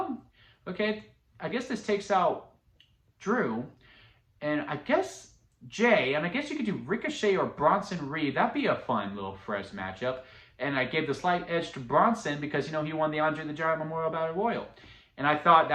okay, I guess this takes out Drew, and I guess Jay, and I guess you could do Ricochet or Bronson Reed. That'd be a fun little fresh matchup. And I gave the slight edge to Bronson because, he won the Andre the Giant Memorial Battle Royal. And I thought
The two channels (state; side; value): identical; both; correlation 1.00